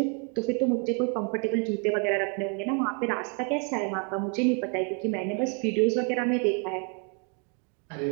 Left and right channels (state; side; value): quieter; left; 37.3 dB